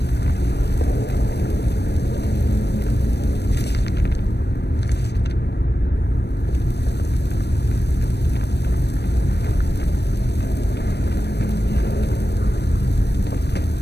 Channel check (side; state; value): right; late; 0.49 ms